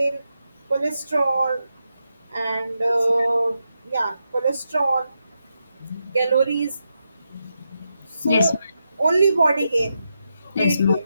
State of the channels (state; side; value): inverted; both; correlation -0.86